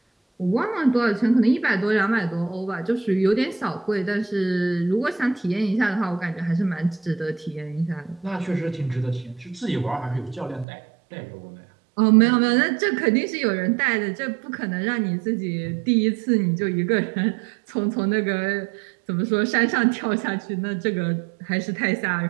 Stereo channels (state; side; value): drops out; left; at 10.7 s